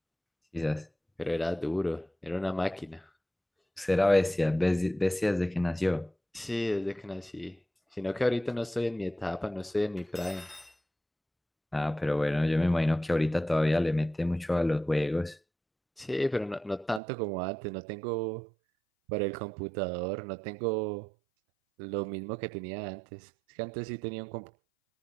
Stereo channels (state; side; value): drops out; left; at 17.0 s